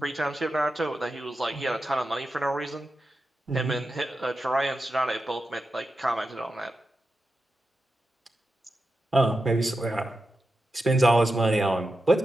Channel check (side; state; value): both; normal; correlation 0.90